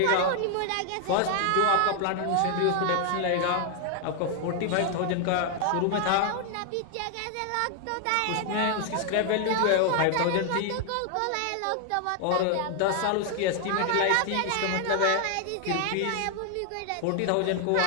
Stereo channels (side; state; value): both; different; correlation 0.00